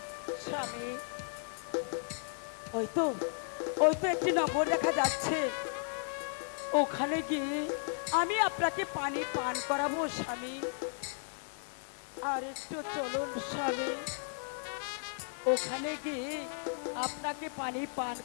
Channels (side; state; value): right; silent; 55 dB below the other